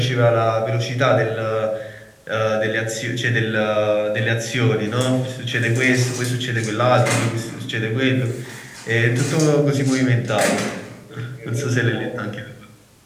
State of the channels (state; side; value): identical; both; correlation 1.00